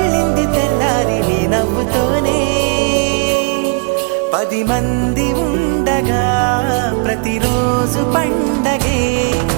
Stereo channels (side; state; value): left; quieter; 33.1 dB